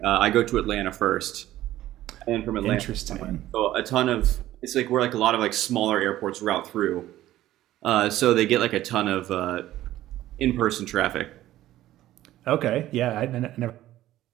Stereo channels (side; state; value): left; quieter; 14.4 dB